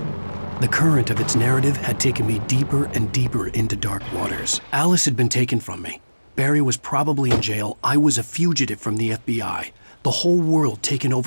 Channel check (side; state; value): both; inverted; correlation -1.00